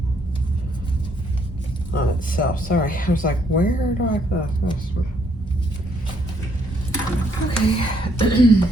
On itself, sorry. I was like, where do I put this? Okay.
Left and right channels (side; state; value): both; normal; correlation 0.70